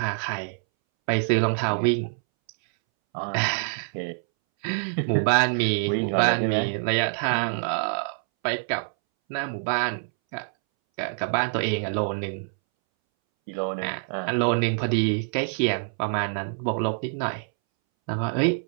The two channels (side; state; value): left; silent; 61 dB below the other